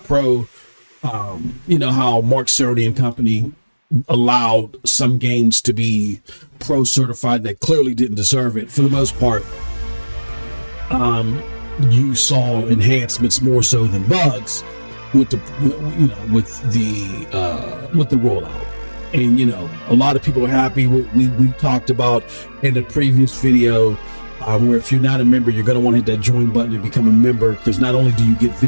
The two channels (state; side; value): inverted; both; correlation -1.00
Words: Pro, you know, how Mark Cerny and company allowed some games to be Pro certified that clearly didn't deserve it. For the most part, you saw enhancements more so than bugs with the, you know, with the rollout. And, you know, a lot of people are happy. We talked about in the previous video, where if you're not a member, you're going to want to hit that join button and become a member, because not only do you get